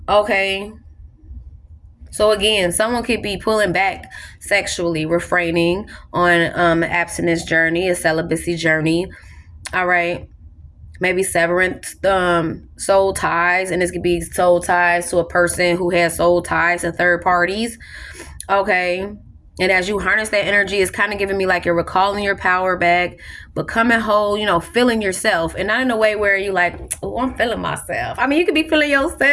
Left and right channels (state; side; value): identical; both; correlation 1.00